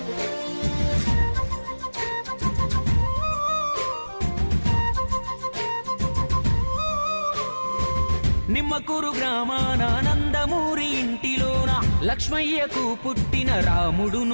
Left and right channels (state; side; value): inverted; both; correlation -1.00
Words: నిమ్మకూరు గ్రామాన నందమూరి ఇంటిలోన లక్ష్మయ్యకు పుట్టిన రాముడు